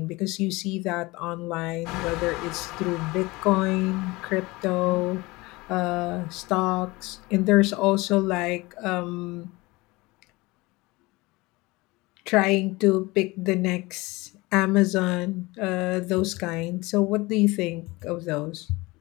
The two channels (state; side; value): quieter; right; 22.5 dB